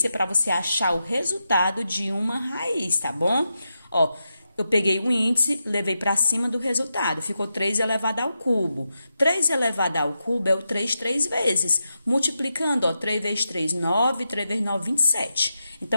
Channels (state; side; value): inverted; both; correlation -0.87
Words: para você achar o resultado de uma raiz, tá bom? Ó, eu peguei o índice, levei para cima do resultado. Ficou 3 elevado ao cubo. 3 elevado ao cubo é o 3 vezes. Multiplicando, ó, 3 vezes 3, 9. 3 vezes 9, 27.